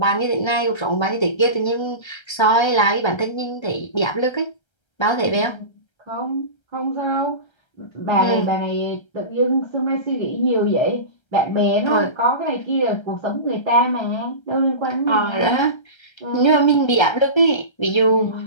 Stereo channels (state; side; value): late; right; 1.3 ms